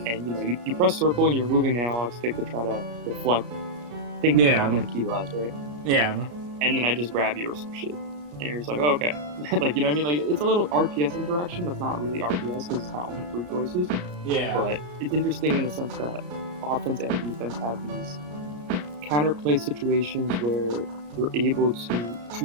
and you press circle and you're moving the analog stick to try to deflect, thinking that I'm going to key blast, right? Yeah. And then I just grab you or some shit. And you're just like, oh, okay. Like, you know what I mean? Like, it's a little RPS interaction that's not really RPS because it's not only 3 choices. Yeah. But it's interesting in the sense that offense and defense have these counterplay situations where you're able to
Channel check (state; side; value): late; left; 34 ms